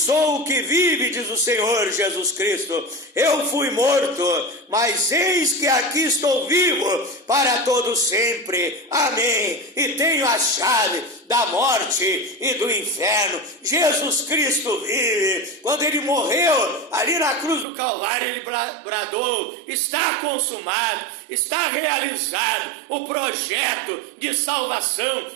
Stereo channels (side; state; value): left; drops out; at 17.7 s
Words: o que vive, diz o Senhor Jesus Cristo. Eu fui morto, mas eis que aqui estou vivo para todo sempre. Amém. E tenho a chave da morte e do inferno. Jesus Cristo vive. Quando ele morreu ali na cruz do Calvário, ele bradou: está consumado, está realizado o projeto de salvação,